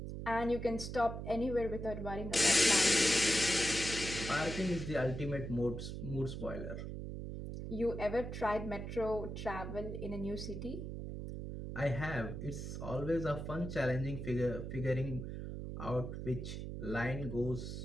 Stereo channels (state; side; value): noise; right; hum, 6 dB below the sound